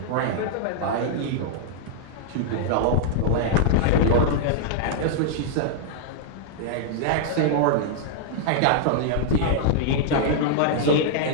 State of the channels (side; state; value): both; different; correlation -0.01